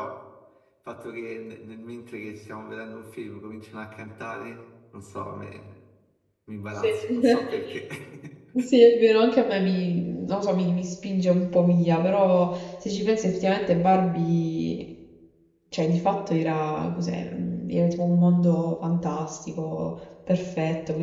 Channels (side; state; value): both; identical; correlation 1.00